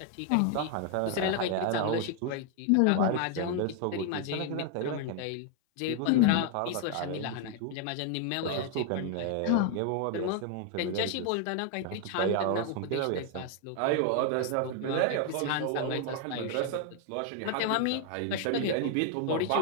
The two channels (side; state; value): both; different; correlation 0.00